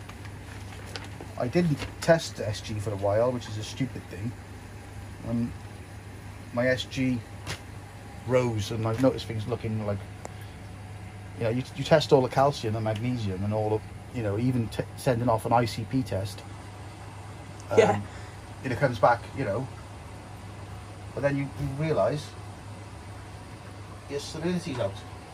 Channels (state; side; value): identical; both; correlation 1.00